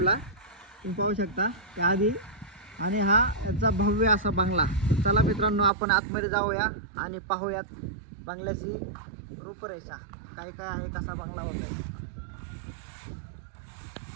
तुम्ही पाहू शकता त्या आधी। आणि हा याचा भव्य असा बंगला। चला मित्रांनो, आपण आतमध्ये जाऊया आणि पाहूयात बंगल्याची रूपरेषा काय काय आहे, कसा बंगला होता।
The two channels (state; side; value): drops out; left; at 5.7 s